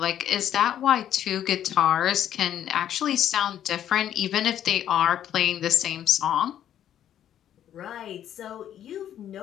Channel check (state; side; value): quieter; right; 10.7 dB